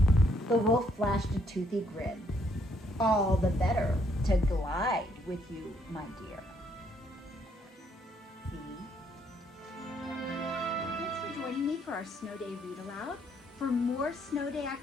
The wolf flashed a toothy grin. "All the better to glide with you, my dear." See? Thanks for joining me for our Snow Day Read Aloud. For more Snow Day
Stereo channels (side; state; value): both; normal; correlation 0.70